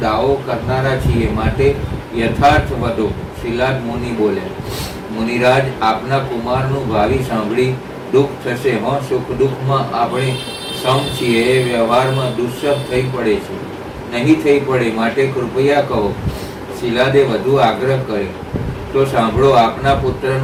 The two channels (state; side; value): identical; both; correlation 1.00